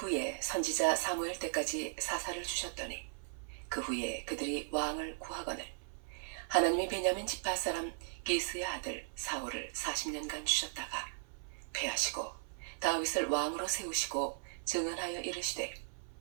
선지자 사무엘 때까지 사사를 주셨더니 그 후에 그들이 왕을 구하거늘 하나님이 베냐민 지파 사람 기스의 아들 사울을 40년간 주셨다가 패하시고 다윗을 왕으로 세우시고 증언하여 이르시되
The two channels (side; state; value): left; silent; 53 dB below the other